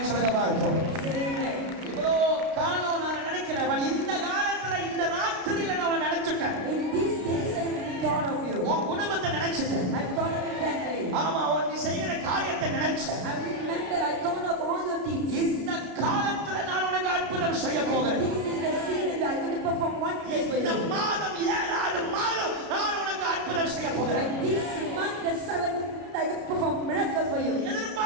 சொல்லுங்க பாருங்க. Say amen. இவ்வளோ காலம் நான் நினைக்கிறேன், but இந்த காலத்துல இந்த ராத்திரியில நான் நினைச்சுட்டேன். In these days I have thought of you. உன் குடும்பத்தை நினைச்சிட்டேன். I have thought of your family. ஆமா, நீ செய்கிற காரியத்தை நினைச்சேன். I remember I thought of all your deeds. இந்த காலத்துல நான் உனக்கு அற்புதம் செய்ய போகிறேன். This is the season that I'm going to perform one place for இந்த you. மாதம் 7வது மாதம் நான் உனக்கு அற்புதம் செய்ய போகிறேன். Like this month, the 7th, I will perform miracle for you.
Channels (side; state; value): left; late; 33 ms